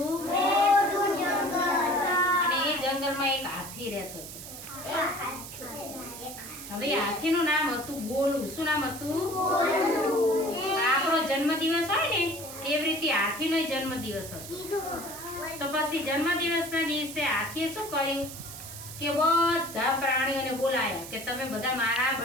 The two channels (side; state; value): right; noise; hiss, 12 dB below the sound